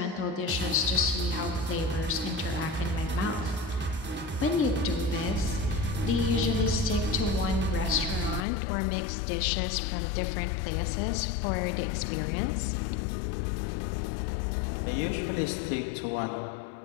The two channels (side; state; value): right; drops out; at 8.5 s